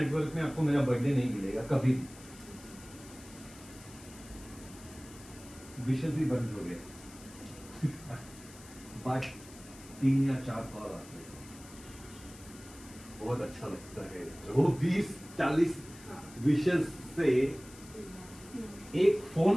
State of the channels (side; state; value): left; noise; hiss, 19 dB below the sound